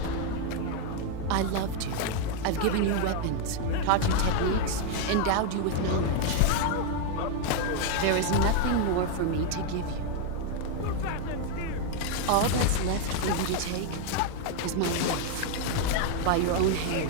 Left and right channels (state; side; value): different; both; correlation 0.01